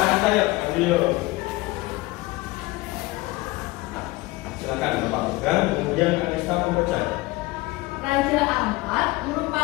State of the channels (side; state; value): right; quieter; 21.0 dB